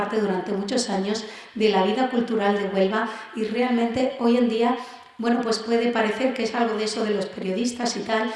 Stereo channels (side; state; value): both; identical; correlation 1.00